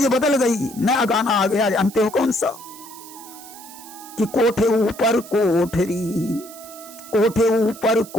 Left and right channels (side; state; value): right; noise; hiss, 17 dB below the sound